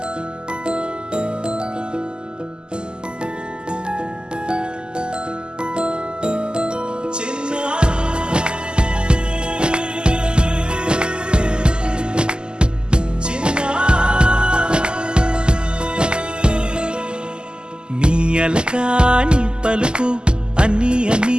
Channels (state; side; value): late; left; 0.047 ms